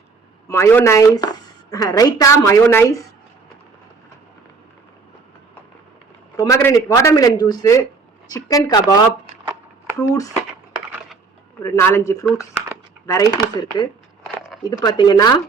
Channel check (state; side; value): quieter; left; 4.4 dB